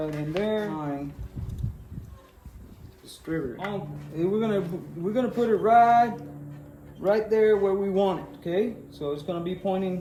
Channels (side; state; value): both; identical; correlation 1.00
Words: in there. Distributor. We're gonna put it right there where we want it. Okay, so it's gonna be